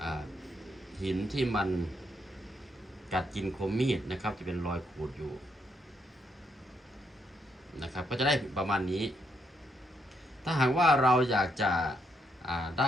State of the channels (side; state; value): both; normal; correlation 0.76